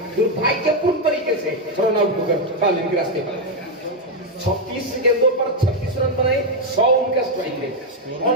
दुर्भाग्यपूर्ण तरीके से रन आउट होकर फाइनल के रास्ते पर 36 गेंदों पर 36 रन बनाए, 100 उनका स्ट्राइक रेट,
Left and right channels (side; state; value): both; normal; correlation 0.03